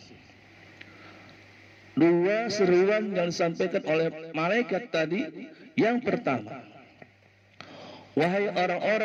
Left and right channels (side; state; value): both; identical; correlation 1.00